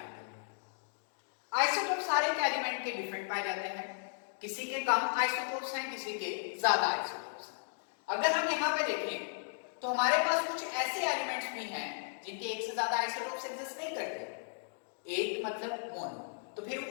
करना। आइसोटोप सारे के एलिमेंट के डिफरेंट पाए जाते हैं, किसी के कम आइसोटोप्स हैं, किसी के ज्यादा आइसोटोप्स हैं। अगर हम यहाँ पे देखें तो हमारे पास कुछ ऐसे एलिमेंट्स भी हैं जिनके एक से ज्यादा आइसोटोप्स एग्जिस्ट नहीं करते, एक मतलब मोनो। तो फिर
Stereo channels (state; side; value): silent; right; digital silence